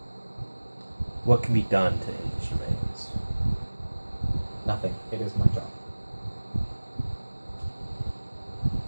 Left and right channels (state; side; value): inverted; both; correlation -1.00